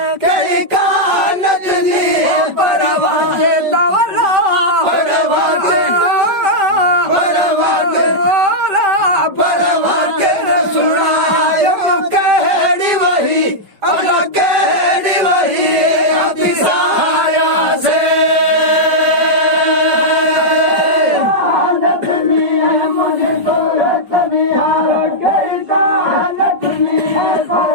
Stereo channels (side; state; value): left; late; 5.2 ms